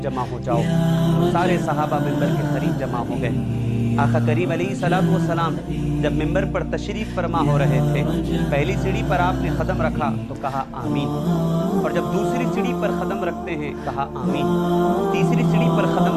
जमा हो जाओ। सारे सहाबा मिंबर के करीब जमा हो गए। आका करीम अलैहिस्सलातु वस्सलाम जब मिंबर पर तशरीफ़ फरमा हो रहे थे, पहली सीढ़ी पर आपने कदम रखा तो कहा आमीन, और जब दूसरी सीढ़ी पर कदम रखते हैं कहा आमीन, तीसरी सीढ़ी पर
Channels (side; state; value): both; identical; correlation 1.00